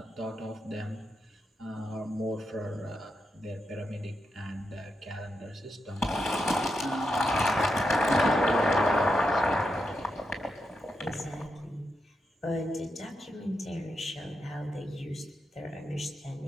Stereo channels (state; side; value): normal; both; correlation 0.85